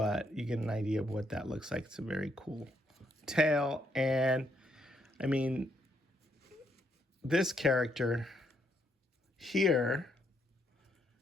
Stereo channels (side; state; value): both; normal; correlation 0.74